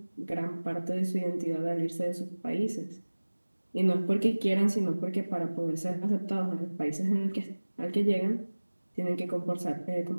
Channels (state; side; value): inverted; both; correlation -1.00